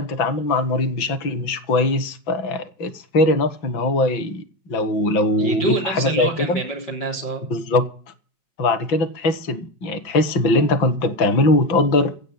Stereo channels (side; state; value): right; late; 5.5 ms